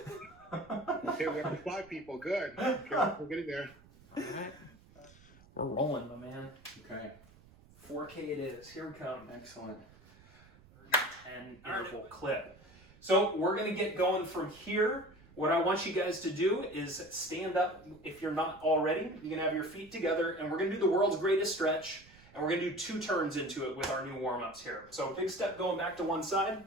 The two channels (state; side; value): noise; right; rumble, 24 dB below the sound